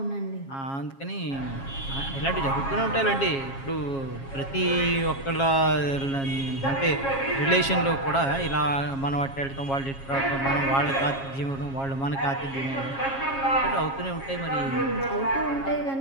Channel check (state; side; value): late; right; 7.3 ms